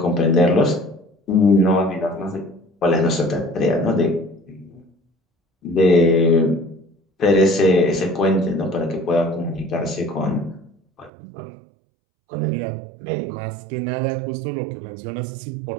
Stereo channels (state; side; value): drops out; left; at 11.1 s